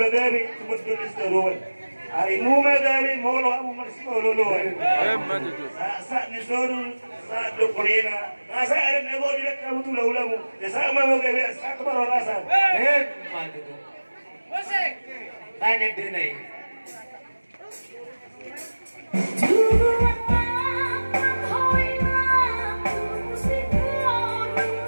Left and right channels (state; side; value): inverted; both; correlation -1.00